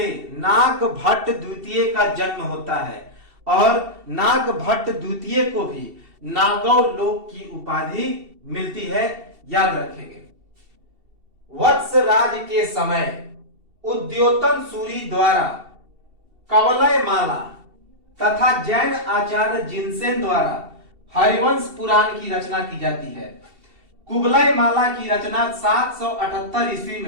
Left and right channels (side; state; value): left; late; 2.7 ms